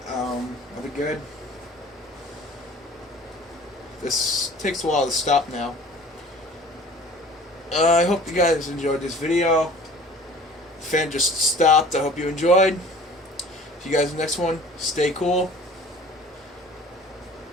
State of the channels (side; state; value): both; normal; correlation 0.46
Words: I'll be good. This takes a while to stop now. I hope you guys enjoyed this video. The fan just stopped. I hope you enjoyed. See you guys in the next one. Stay cool.